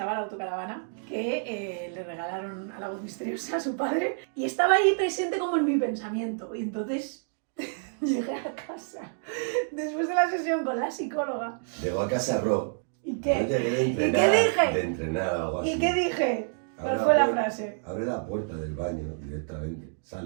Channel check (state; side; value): silent; left; digital silence